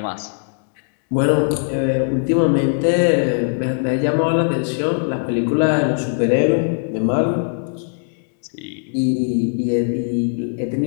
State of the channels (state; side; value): silent; right; digital silence